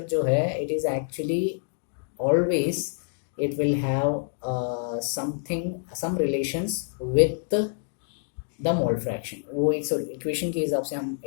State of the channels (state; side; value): silent; right; digital silence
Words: जो है it is actually always it will have some relations with the mole fraction। वो एक इक्वेशन के हिसाब से हम